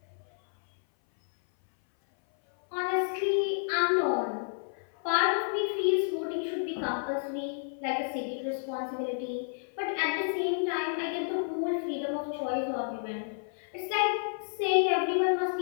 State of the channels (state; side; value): silent; right; 58 dB below the other